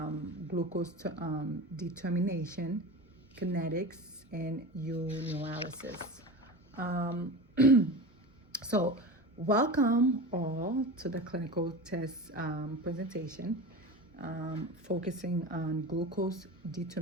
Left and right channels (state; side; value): normal; both; correlation 0.29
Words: determination, kinetics, and urinalysis. Um, So, welcome all to the clinical test presentation, focusing on glucose